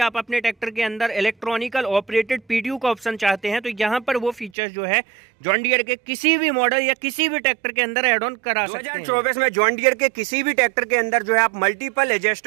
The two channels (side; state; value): left; drops out; at 4.5 s